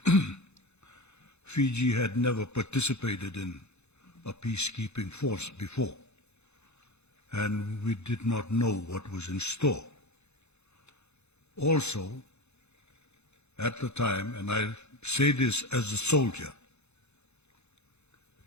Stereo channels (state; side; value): late; right; 0.81 ms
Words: Fiji had never participated in a peacekeeping force before, and we did not know what was in store. Also, at the time, and I say this as a soldier,